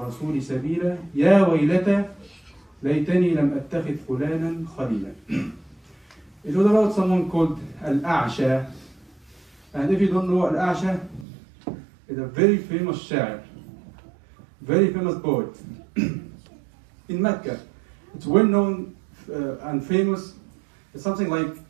سَبِيلًا يَا وَيْلَتَى لَيْتَنِي لَمْ أَتَّخِذْ فُلَانًا خَلِيلًا. It was about someone called Al-A'sha. And if you don't know, Al-A'sha is a very famous sha'ir, very famous poet in Mecca. It's well known and famous. It's something like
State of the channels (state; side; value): drops out; left; at 11.2 s